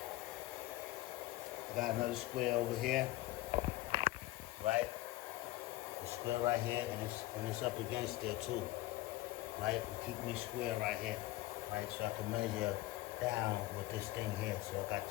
I got another square over here, right? The square right here, and it's up against there too, right? Keep me square right here, right? So I can measure down with this thing here. So I got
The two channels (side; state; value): right; quieter; 17.6 dB